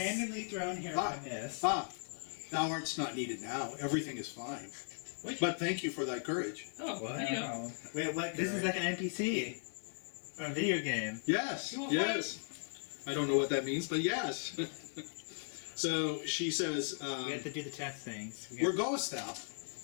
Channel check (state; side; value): silent; right; 53 dB below the other